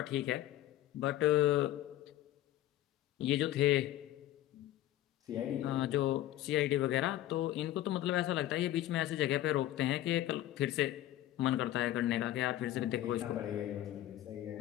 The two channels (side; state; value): right; quieter; 13.9 dB